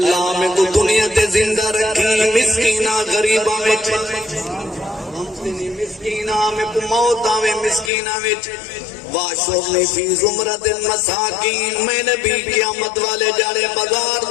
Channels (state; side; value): drops out; right; at 7.9 s